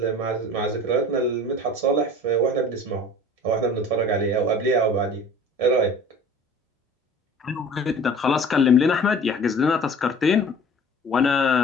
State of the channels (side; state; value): both; normal; correlation 0.44